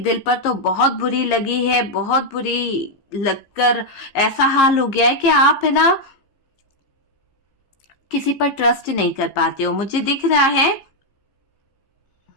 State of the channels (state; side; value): late; right; 15 ms